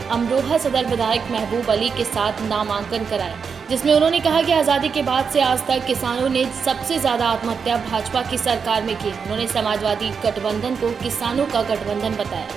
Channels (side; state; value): left; quieter; 6.0 dB